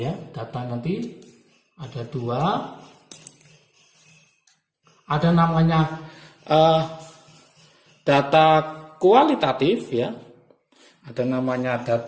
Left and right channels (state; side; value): identical; both; correlation 1.00